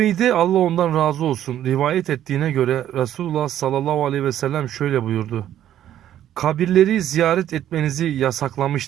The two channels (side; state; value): left; quieter; 11.5 dB